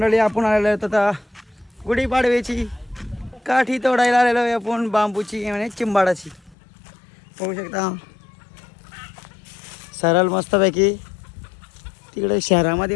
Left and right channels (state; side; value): drops out; right; at 6.6 s